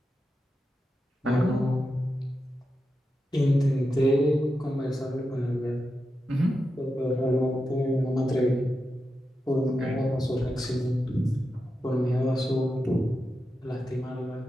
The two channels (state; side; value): normal; both; correlation 0.89